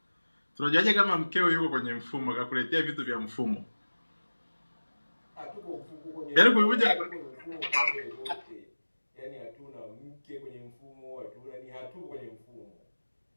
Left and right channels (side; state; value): both; inverted; correlation -1.00